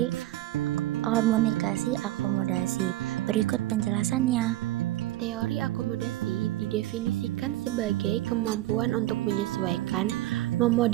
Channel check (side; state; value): left; quieter; 16.0 dB